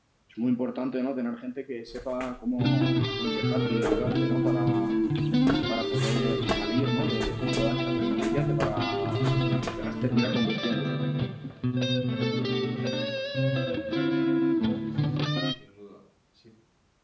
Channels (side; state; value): both; identical; correlation 1.00